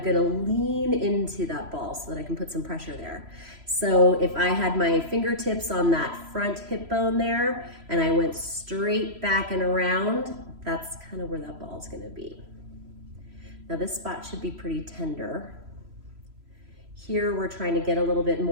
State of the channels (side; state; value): left; late; 3.0 ms